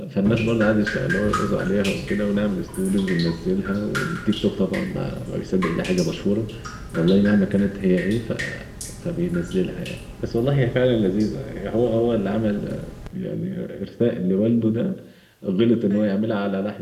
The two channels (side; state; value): both; identical; correlation 1.00